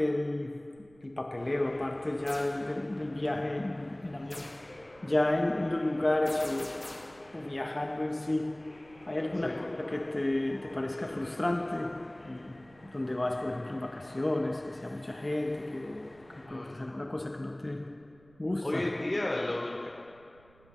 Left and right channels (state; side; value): noise; right; rumble, 27 dB below the sound